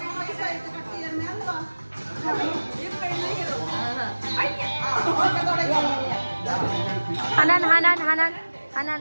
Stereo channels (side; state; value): both; inverted; correlation -1.00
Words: ഹനാൻ ഹനാൻ ഹനാൻ ഹനാൻ